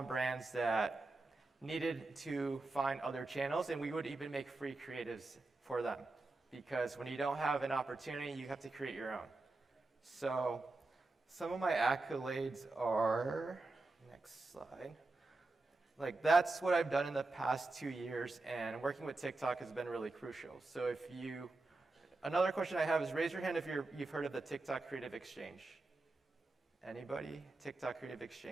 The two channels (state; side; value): quieter; left; 3.2 dB